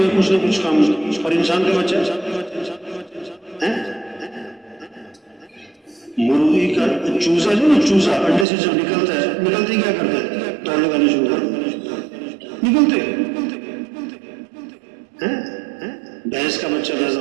ہے کچھ نہ کچھ کام. اور انسان کا بچہ مرغی کا چوزا جو نا، چوزا انڈے سے جب نکلتا ہے، نکلتے ہی کیا کرتا ہے؟ دوڑ لگانے شروع کر نکلتے. بھینس کا بچہ پیدا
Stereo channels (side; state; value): left; drops out; at 8.5 s